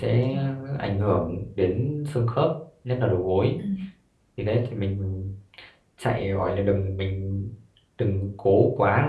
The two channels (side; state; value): both; identical; correlation 1.00